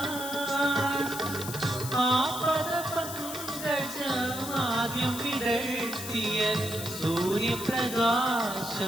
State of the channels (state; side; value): noise; left; hiss, 8 dB below the sound